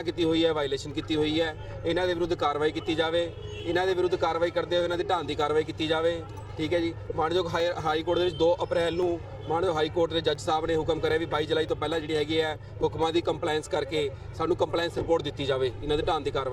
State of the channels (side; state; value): both; identical; correlation 1.00